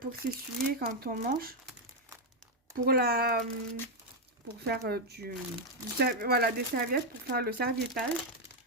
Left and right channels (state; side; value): normal; both; correlation 0.02